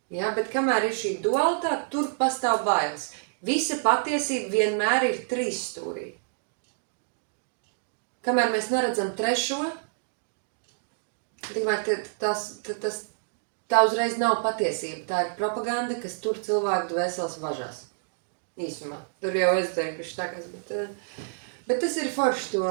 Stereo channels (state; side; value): silent; left; digital silence